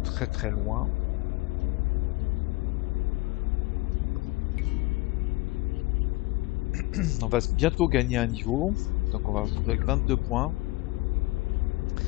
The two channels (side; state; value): right; quieter; 21.3 dB